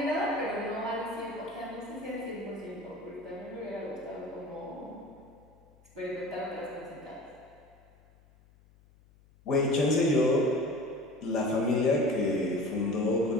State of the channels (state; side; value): noise; left; hum, 28 dB below the sound